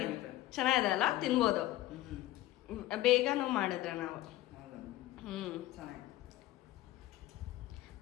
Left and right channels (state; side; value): quieter; right; 15.9 dB